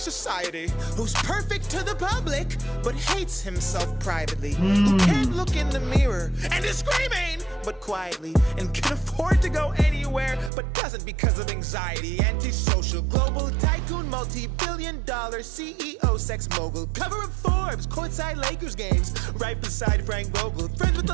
who's perfect to the public, but hates himself privately, who can't look in the mirror and is screaming, but quietly, and can afford to go anywhere, but doesn't because of anxiety. Antisocial, global tycoon, multi-billion-dollar CEO, sex mogul, cover of Forbes, courtside Lakers games, right beside Frank Vogel, friends with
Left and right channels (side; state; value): left; drops out; at 10.5 s